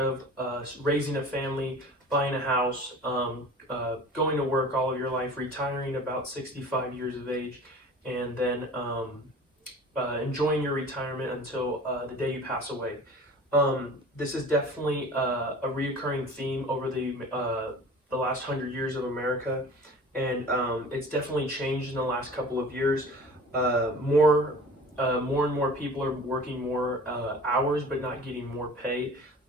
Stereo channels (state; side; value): normal; both; correlation 0.42